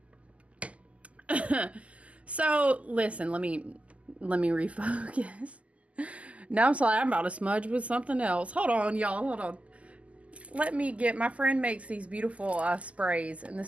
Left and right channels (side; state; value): left; late; 0.066 ms